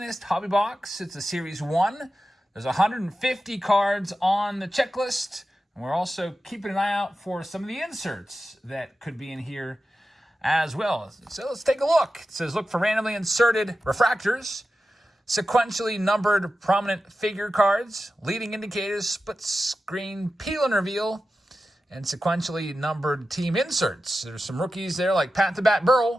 Hobby Box. It's a Series 1. There's 150 cards on the checklist. And we're also keeping an eye out for some of the inserts that could be in here as well. So let's take a look. It says, look for randomly inserted refractors, sequentially numbered prominent figure cards, leading indicators, split screen peel and reveal, and sequentially numbered team inserts. There's some rookies there like Pat the Bat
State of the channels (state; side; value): normal; both; correlation 0.92